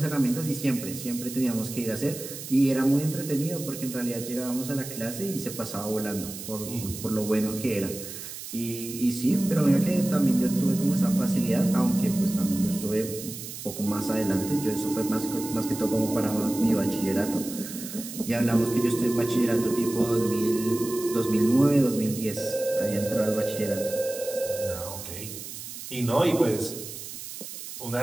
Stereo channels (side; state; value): right; noise; hiss, 10 dB below the sound